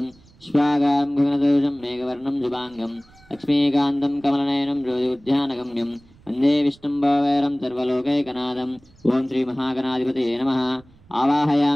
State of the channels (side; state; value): right; noise; rumble, 28 dB below the sound